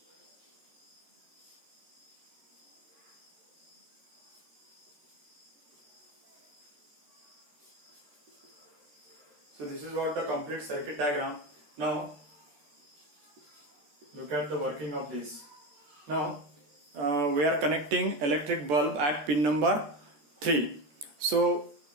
So this is what the complete circuit diagram. Now look at the working of this. Now we are connecting electric bulb at pin number 3. So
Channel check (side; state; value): left; late; 14 ms